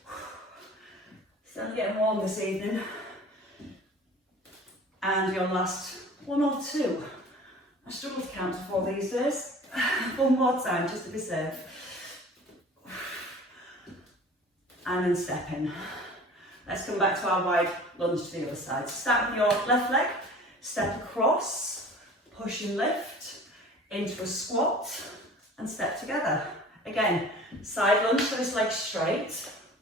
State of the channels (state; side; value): normal; both; correlation 0.44